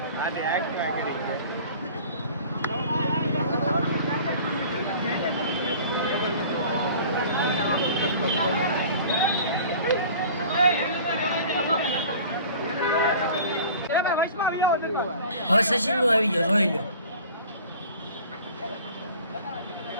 હવે સચિન નું આવી ગયો જોઈ લો.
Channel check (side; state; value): both; inverted; correlation -0.45